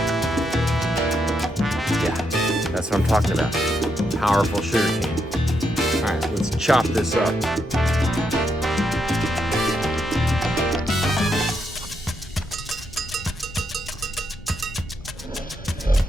Yeah, that's what I'm talking about. Powerful sugar cane. All right, let's chop this up.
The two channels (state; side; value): normal; both; correlation 0.79